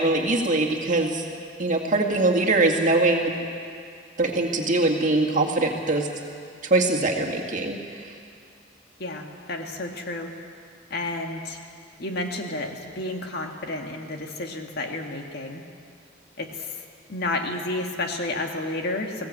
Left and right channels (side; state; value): both; normal; correlation 0.20